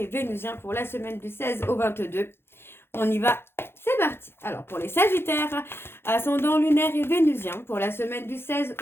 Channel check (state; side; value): late; right; 0.11 ms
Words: vénusien pour la semaine du 16 au 22. On y va, c'est parti. Alors pour les Sagittaires, ascendant lunaire et vénusien pour la semaine du 16